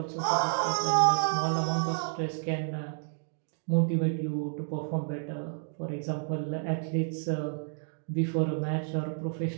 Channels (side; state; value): left; silent; digital silence